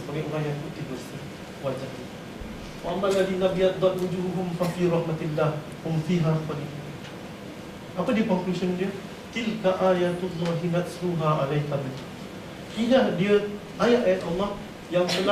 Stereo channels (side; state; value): both; identical; correlation 1.00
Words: orang yang putih bersih wajah. Wa ammal ladzi nabyaddat wujuhum fafi rahmatillah hum fiha khalidun. Apa dia conclusion dia? Tilka ayatullahi natsluha 'alaika bil. Inilah dia ayat-ayat Allah yang